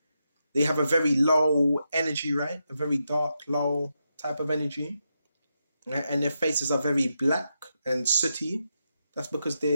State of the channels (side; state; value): both; inverted; correlation -0.85